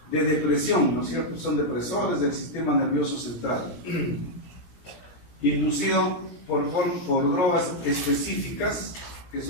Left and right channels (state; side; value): late; right; 17 ms